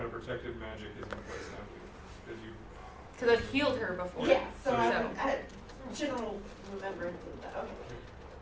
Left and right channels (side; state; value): both; identical; correlation 1.00